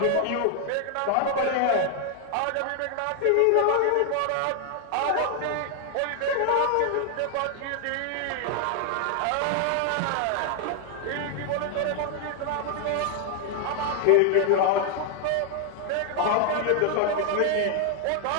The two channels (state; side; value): different; both; correlation 0.00